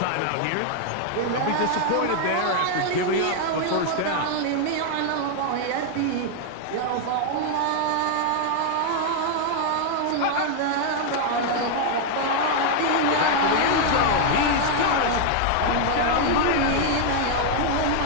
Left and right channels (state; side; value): different; both; correlation 0.00